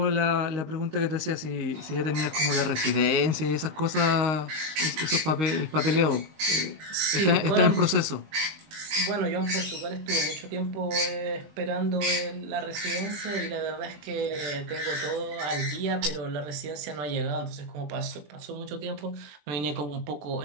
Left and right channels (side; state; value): left; late; 20 ms